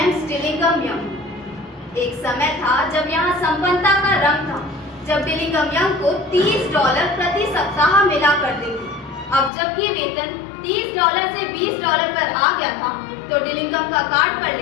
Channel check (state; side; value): drops out; right; at 9.5 s